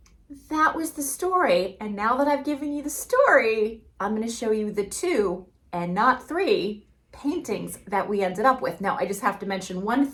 that was the story. And now that I've given you the story, I'm going to show you the 2 and not 3 paintings that we ended up with. Now, I just have to mention one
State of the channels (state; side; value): identical; both; correlation 1.00